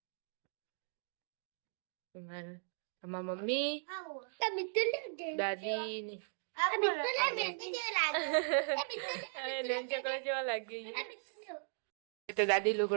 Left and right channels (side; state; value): left; silent; digital silence